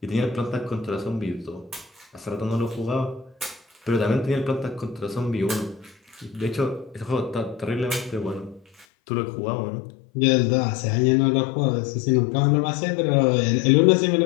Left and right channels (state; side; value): drops out; right; at 8.8 s